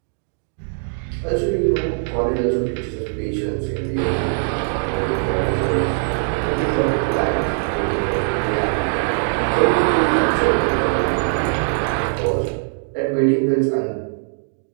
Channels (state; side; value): silent; left; digital silence